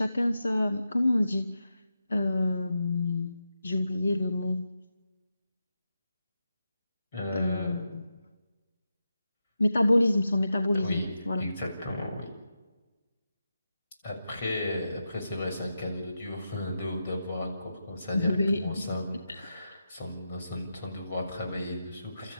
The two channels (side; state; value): both; inverted; correlation -0.89